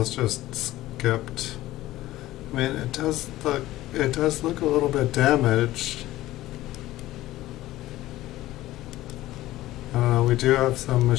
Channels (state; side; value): quieter; right; 16.0 dB